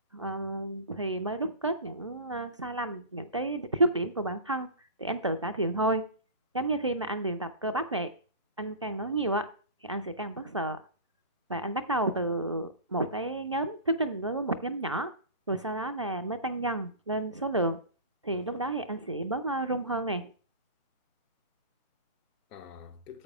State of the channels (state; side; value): inverted; both; correlation -0.32